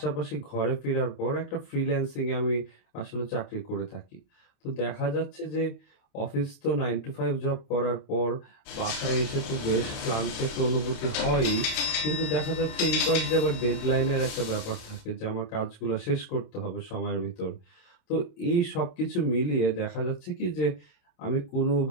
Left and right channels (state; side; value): late; right; 28 ms